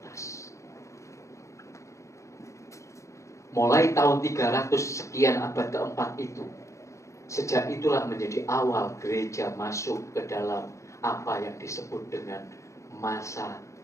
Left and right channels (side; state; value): right; late; 0.15 ms